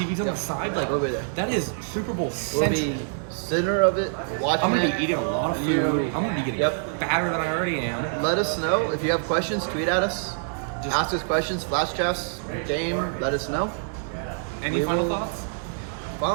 on the side. Like, We'll be there. that is Super Bowl We'll central. be center of it. Watching I'm gonna it. be eating a lot of food. I'm gonna be getting Yep. fatter than I already am. Let us know if you have questions. Tweet at us. Just- Ask us questions. Flash drafts. Game. Let us know. Any We final will- thoughts?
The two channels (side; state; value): left; silent; 61 dB below the other